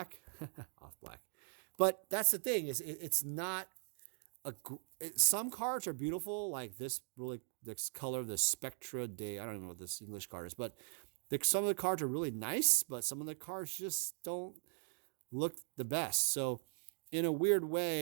off black. But that's the thing is it's not some cards are beautiful, like this color, the Spectra Day. I don't even know what this English card is, but some of the cards are really nice, but some of the cards just don't look the best. So in a weird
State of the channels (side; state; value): left; silent; 51 dB below the other